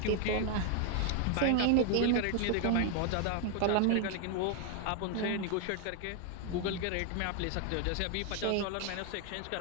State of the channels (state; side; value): different; both; correlation 0.00